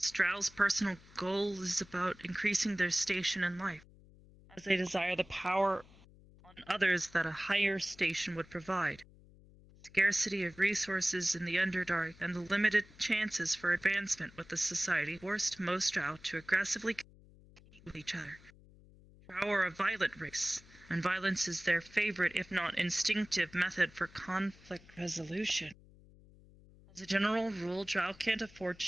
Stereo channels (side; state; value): left; noise; hum, 24 dB below the sound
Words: Drow's personal goal is about increasing their station in life, as they desire the power on others that a higher station would provide. The scarcity of resources in the Underdark and the limited chances for advancement with the society forced most Drow to aggressively compete with each other. Drow are a violent race, and violence is their favorite, if not instinctive, method for conflict resolution. As a general rule, Drow can't afford to